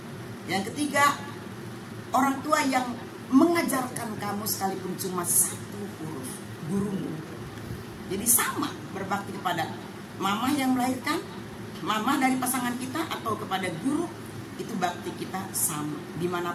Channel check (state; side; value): identical; both; correlation 1.00